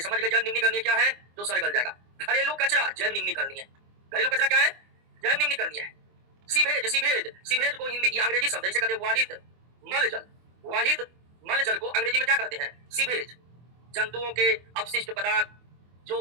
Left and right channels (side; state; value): left; late; 24 ms